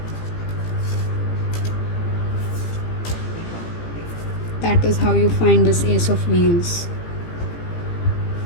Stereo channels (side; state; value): right; late; 18 ms